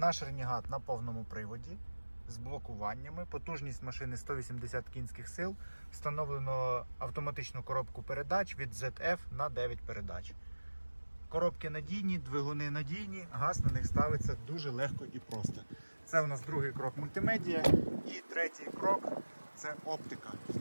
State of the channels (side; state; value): both; inverted; correlation -1.00